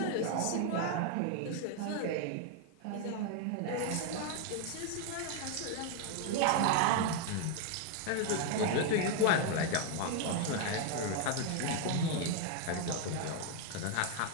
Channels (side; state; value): both; different; correlation 0.01